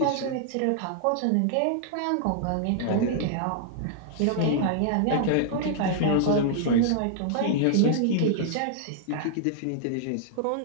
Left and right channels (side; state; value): both; different; correlation -0.01